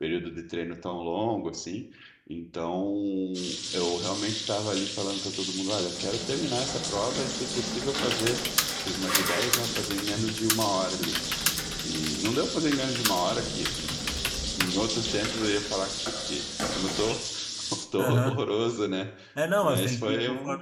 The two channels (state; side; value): identical; both; correlation 1.00